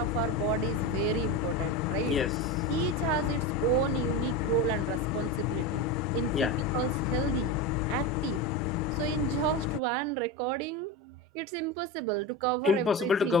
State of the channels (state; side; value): normal; both; correlation 0.20